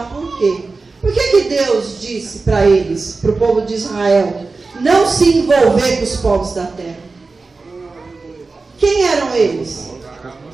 por quê. Por que Deus disse para eles, para o povo de Israel, não se envolver com os povos da terra? Quem eram eles?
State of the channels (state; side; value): quieter; left; 3.9 dB